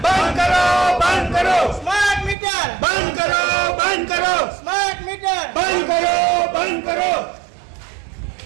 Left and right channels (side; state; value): left; drops out; at 2.4 s